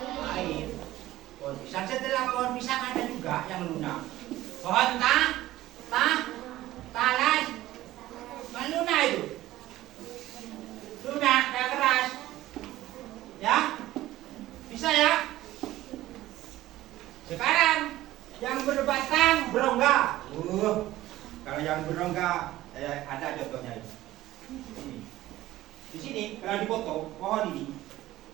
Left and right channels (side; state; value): left; quieter; 15.6 dB